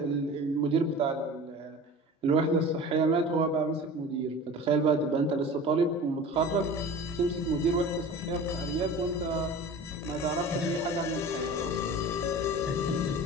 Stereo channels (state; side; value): normal; both; correlation 0.37